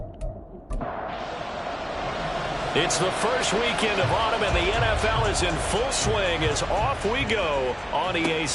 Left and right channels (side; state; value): both; identical; correlation 1.00